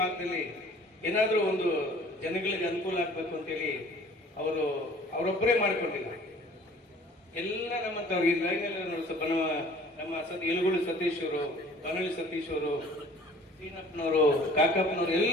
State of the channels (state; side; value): normal; both; correlation 0.51